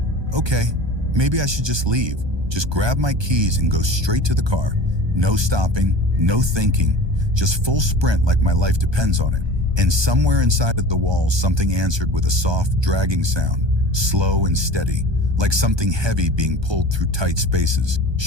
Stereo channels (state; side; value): late; left; 1.2 ms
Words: maybe I should just leave. Just grab my keys and go straight to the car. No stopping, no thinking, just full sprint like my life depends on it. And somewhere inside of the walls, something answered with a soft, dragging sound, slow and steady, like something heavy being pulled through tight spaces.